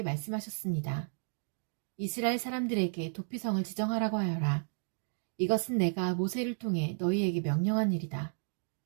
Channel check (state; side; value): silent; left; 56 dB below the other